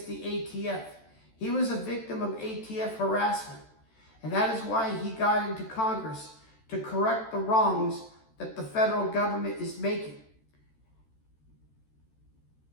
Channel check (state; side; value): late; right; 13 ms